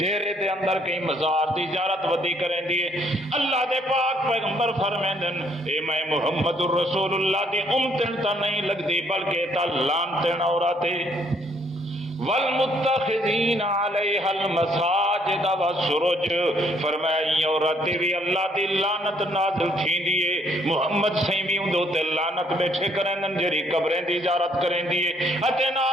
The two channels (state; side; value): normal; both; correlation 0.66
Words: دے اندر کئی مزار دی زیارت ودی کریں دیے اللہ دے پاک پیغمبر فرمیندن اے میں محمد الرسول اللہ دی امتن تا نہیں لگدی بلکہ تا لانتن عورت والمتخذین علیہ المساجد والسرج، فرمایا یہ عورت بھی اللہ دی لعنت نازل تھی دیے محمد سیمی اندو تے لعنت بیٹھے کریں جری قبریں دی زیارت کریں دیے اتے